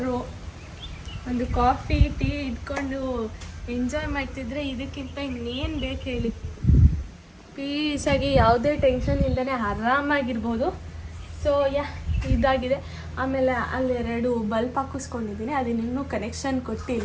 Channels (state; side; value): identical; both; correlation 1.00